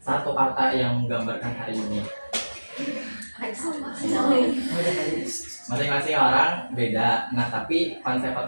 satu kata yang menggambarkan hari ini. Masing-masing orang beda. Nah tapi konsepnya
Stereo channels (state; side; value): inverted; both; correlation -1.00